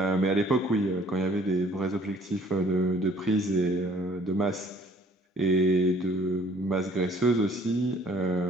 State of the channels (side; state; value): both; normal; correlation 0.56